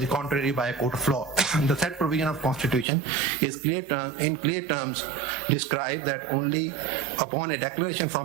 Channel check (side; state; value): left; drops out; at 2.9 s